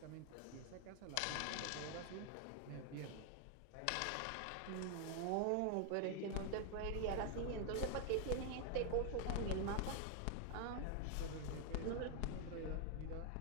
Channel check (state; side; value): different; both; correlation 0.00